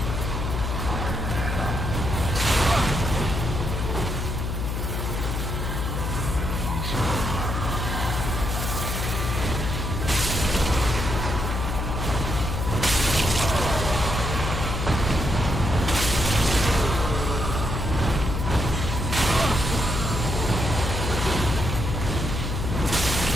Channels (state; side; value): noise; left; hum, 2 dB below the sound